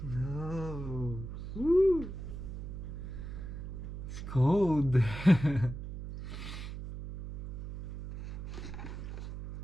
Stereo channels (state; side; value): noise; right; hum, 8 dB below the sound